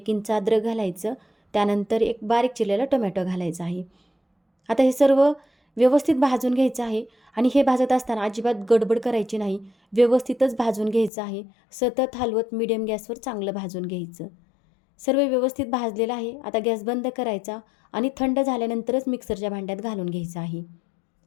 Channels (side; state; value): right; drops out; at 11.1 s